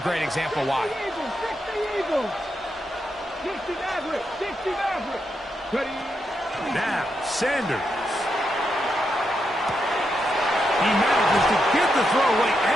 example why. 60 Maverick. Now, Sanders. He manages to get the throwaway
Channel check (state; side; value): normal; both; correlation 0.83